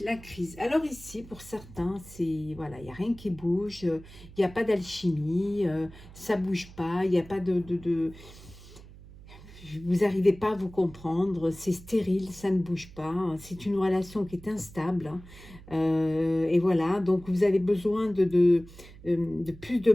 crise. Alors ici, pour certains, c'est voilà, il n'y a rien qui bouge, il n'y a pas d'alchimie, ça bouge pas, il n'y a pas vous n'arrivez pas à vous comprendre, c'est stérile, ça ne bouge pas, c'est une relation qui est instable. Et voilà, donc vous avez besoin de plus de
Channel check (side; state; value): right; noise; hum, 19 dB below the sound